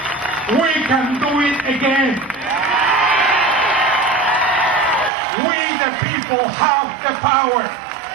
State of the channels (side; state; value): left; drops out; at 5.1 s